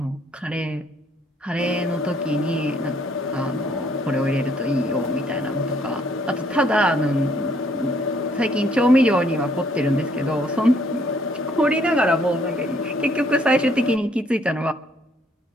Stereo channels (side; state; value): both; normal; correlation 0.66